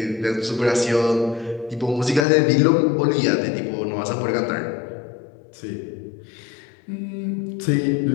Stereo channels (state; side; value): drops out; right; at 2.2 s